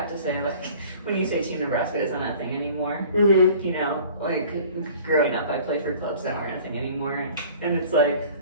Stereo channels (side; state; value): both; inverted; correlation -0.48